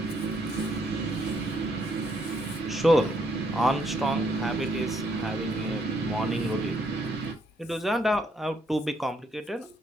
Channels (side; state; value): both; normal; correlation 0.72